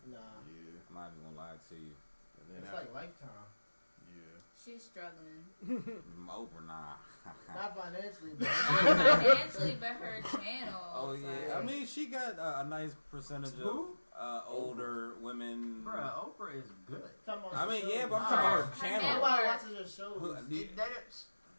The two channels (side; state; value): both; inverted; correlation -1.00